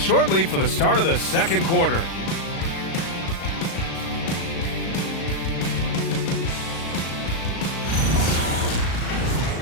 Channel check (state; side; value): late; right; 36 ms